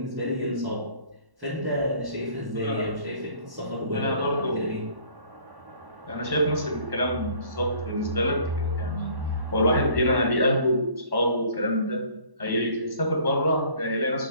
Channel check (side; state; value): left; late; 1.1 ms